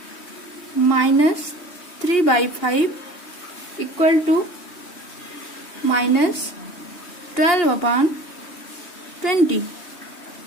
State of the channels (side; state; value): right; late; 2.8 ms